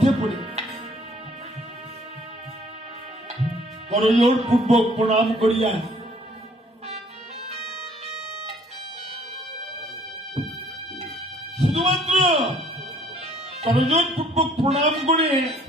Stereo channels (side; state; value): both; normal; correlation 0.59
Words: পড়ে। করজোড় পূর্বক প্রণাম করিয়া শুধুমাত্র করজোড় পূর্বক প্রণাম করে